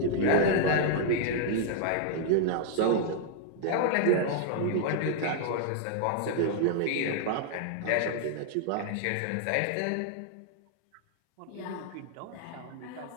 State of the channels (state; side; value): different; both; correlation -0.01